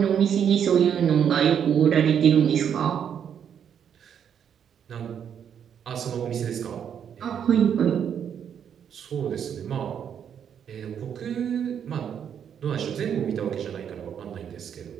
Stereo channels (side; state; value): left; quieter; 8.4 dB